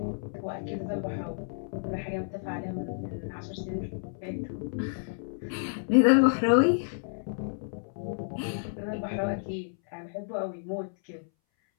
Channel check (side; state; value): right; silent; 58 dB below the other